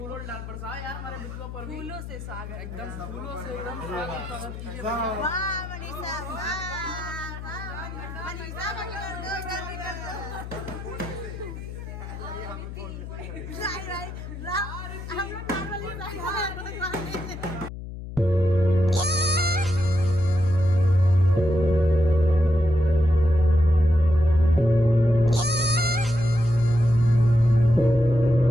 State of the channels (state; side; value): noise; left; hum, 10 dB below the sound